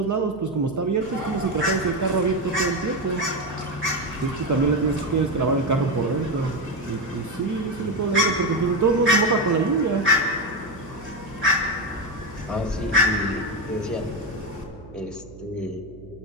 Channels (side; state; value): right; noise; hum, 19 dB below the sound